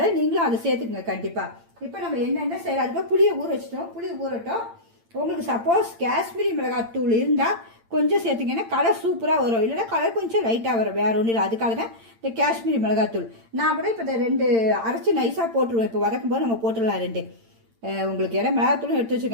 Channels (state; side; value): late; left; 8.8 ms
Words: நீங்களும் அதை சேர்த்துக்குங்க கண்டிப்பாக. இப்போ நம்ம என்னென்ன செய்யலாம். அதுக்கு புளியை ஊற வச்சுட்டோம். புளி ஊறட்டும். உங்களுக்கு சப்போஸ் காஷ்மீரி மிளகாய் தூள் இருந்தால் கொஞ்சம் சேர்த்துங்கன்னா கலர் சூப்பராக வரும். இல்லைன்னா கலர் கொஞ்சம் லைட்டாக வரும். வேறு ஒன்றும் இல்லை. அதுக்காக தான் இந்த காஷ்மீரி மிளகாத்தூள். நான் கூட இப்போ இந்த 2 அரைச்சி நைஸாக போட்டுருவேன். இப்போ வதக்கும் போது நம்ம போட்டுடலாம் 2. உங்களுக்கு ஏன்னா மிளகாத்தூளும் எடுத்து